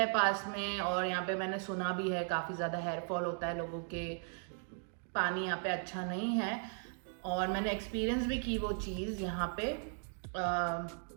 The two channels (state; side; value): silent; left; 53 dB below the other